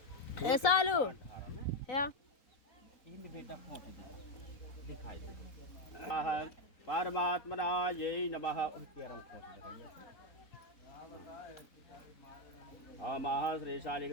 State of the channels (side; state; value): right; late; 4.0 ms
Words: ऐसा लो या इन बेटा खोल दिखाई परमात्मना ये नमः केरम खोल दे ओमः श्री